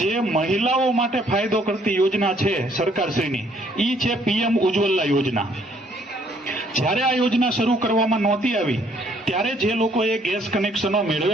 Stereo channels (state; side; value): normal; both; correlation 0.64